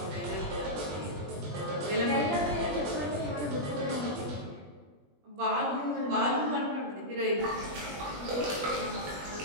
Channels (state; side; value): late; left; 20 ms